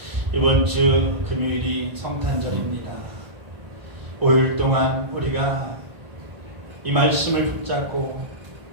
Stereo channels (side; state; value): left; late; 1.5 ms